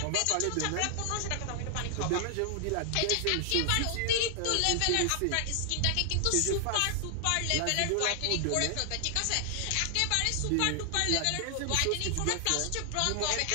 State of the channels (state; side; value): different; both; correlation 0.00